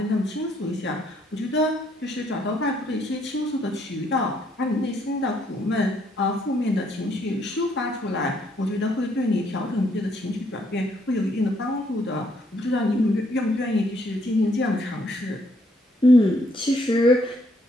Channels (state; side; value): normal; both; correlation 0.70